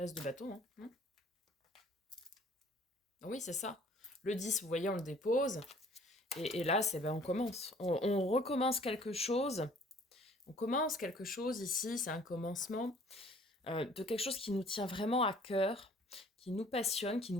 de bâton, hein. Oui, c'est ça. Le 10, vous voyez, on le dépose. Et là, c'est on commence. On recommence quelque chose. On commence quelque chose ici, c'est un commencement de quelque chose qui nous tient vraiment à cœur, qui nous passionne, qui nous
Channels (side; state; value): both; normal; correlation 0.55